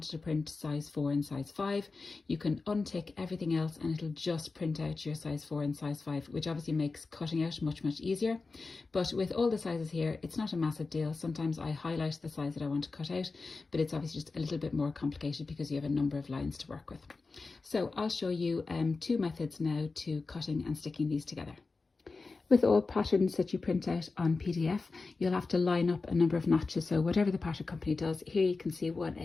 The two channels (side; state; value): right; quieter; 4.0 dB